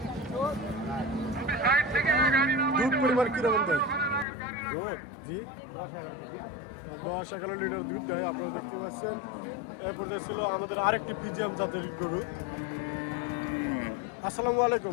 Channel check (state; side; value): drops out; right; at 4.2 s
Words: দুধ পরিমাণ কিরকম দেয়? জি, 10-11 লিটার দুধ দেয়। আপনারা দেখতে পাচ্ছেন। এরপর ছিল আমাদের আরেকটি ফিজিয়াম জাতের গরু। আসসালামু